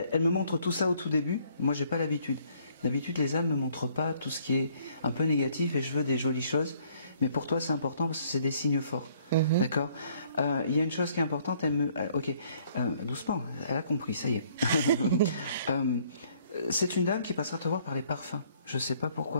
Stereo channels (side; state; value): both; inverted; correlation -0.63